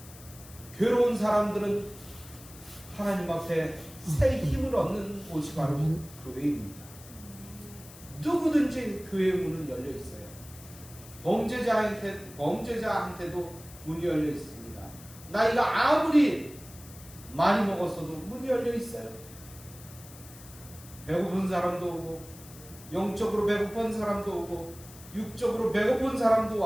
괴로운 사람들은 하나님 앞에 새 힘을 얻는 곳이 바로 교회입니다. 누구든지 교회의 문은 열려 있어요. 범죄자한테도 문이 열려 있습니다. 나이가 아무리 많이 먹었어도 문이 열려 있어요. 배고픈 사람도 오고, 영적으로 배고픈 사람도 오고, 육적으로 배고픈 사람도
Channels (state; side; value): noise; left; hiss, 19 dB below the sound